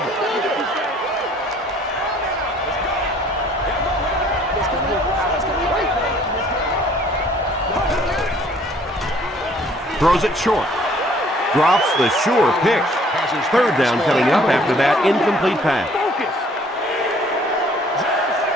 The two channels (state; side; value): normal; both; correlation 0.58